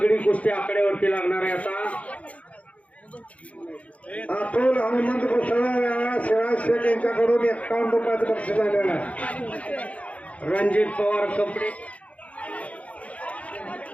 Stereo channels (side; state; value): right; late; 0.066 ms